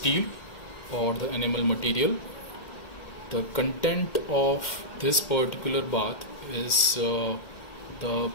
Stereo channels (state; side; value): late; right; 2.2 ms